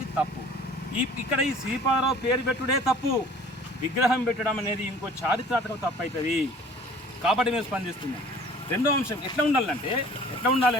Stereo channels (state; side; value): normal; both; correlation 0.49